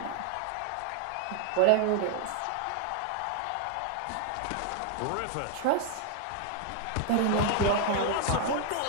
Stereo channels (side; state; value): both; different; correlation 0.00